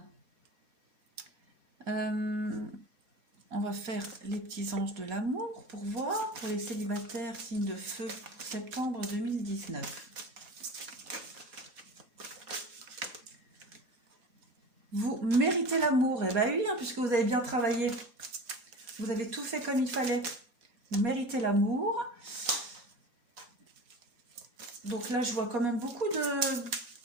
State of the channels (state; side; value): late; left; 4.8 ms